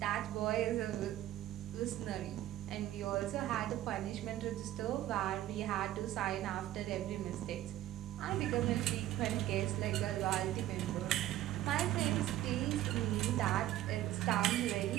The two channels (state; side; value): quieter; left; 13.8 dB